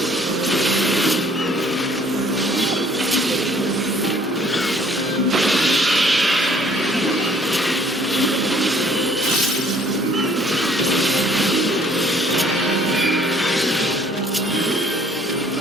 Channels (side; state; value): both; normal; correlation 0.58